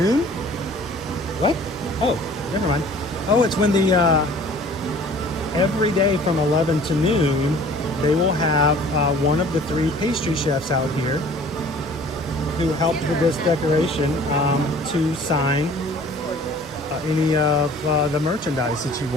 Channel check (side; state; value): both; normal; correlation 0.49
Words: What? Oh, never mind. Oh, it's when the every day from 11 to noon, they will have one of the 3 pastry chefs out here who helped with this decoration to sign any of the merchandise that you